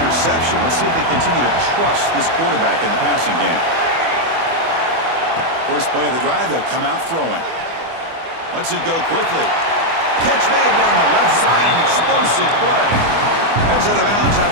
Let's see if they continue to trust this quarterback in the passing game. First play of the drive, they'll come out throwing. Lets it go quickly. Catch made down the left side, an explosive play. Heads out of bounds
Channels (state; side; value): late; left; 24 ms